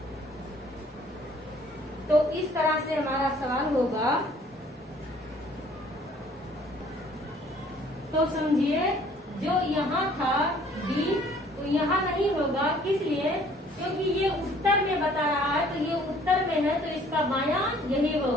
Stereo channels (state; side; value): normal; both; correlation 0.57